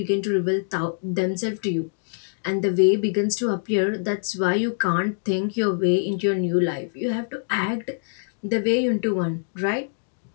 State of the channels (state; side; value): silent; right; digital silence